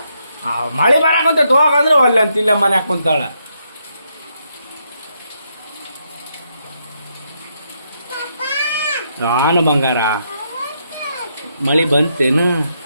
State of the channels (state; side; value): inverted; both; correlation -0.78